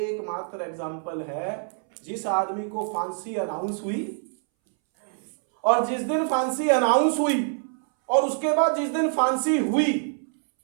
एग्जाम्पल है जिस आदमी को फांसी अनाउंस हुई, और जिस दिन फांसी अनाउंस हुई और उसके बाद जिस दिन फांसी हुई,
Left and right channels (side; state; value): left; silent; 61 dB below the other